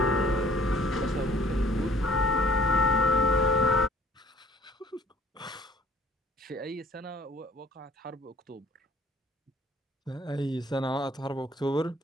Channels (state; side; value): normal; both; correlation 0.56